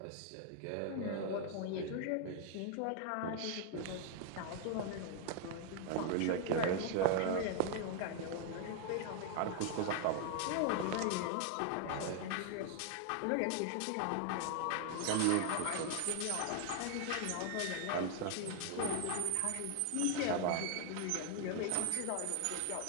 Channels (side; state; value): both; different; correlation 0.00